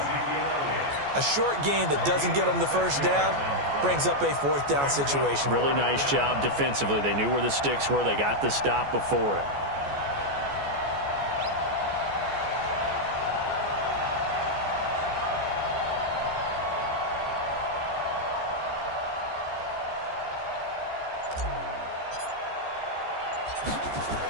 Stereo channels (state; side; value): late; left; 14 ms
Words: A short gain that doesn't get them the first down brings up a fourth down situation. Really nice job defensively. They knew where the sticks were. They got the stop before it.